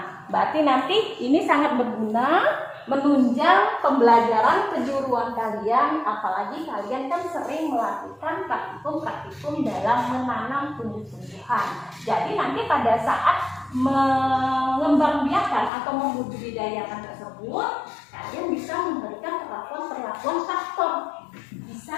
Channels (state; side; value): drops out; right; at 15.7 s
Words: berarti nanti ini sangat berguna menunjang pembelajaran kejuruan kalian, apalagi kalian kan sering melakukan praktikum-praktikum dalam menanam tumbuh-tumbuhan. Jadi nanti pada saat mengembangbiakan atau membudidayakan tersebut, kalian bisa memberikan perlakuan-perlakuan faktor